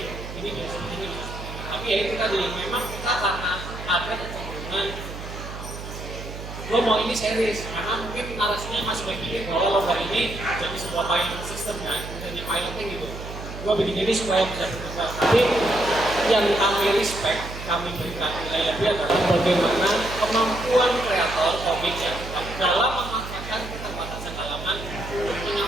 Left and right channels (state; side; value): noise; right; hum, 10 dB below the sound